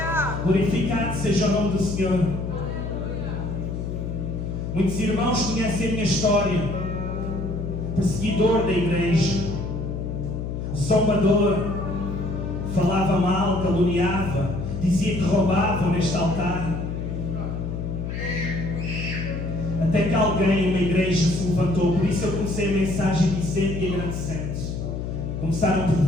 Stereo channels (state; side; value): noise; left; hum, 4 dB below the sound